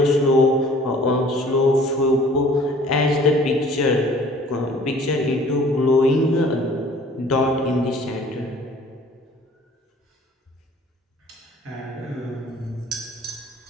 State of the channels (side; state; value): both; normal; correlation 0.51